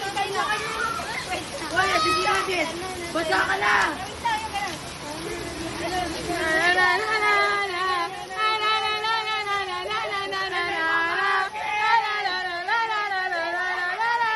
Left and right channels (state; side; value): identical; both; correlation 1.00